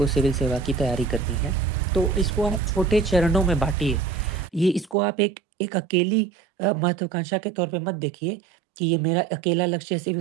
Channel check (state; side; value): drops out; left; at 5.0 s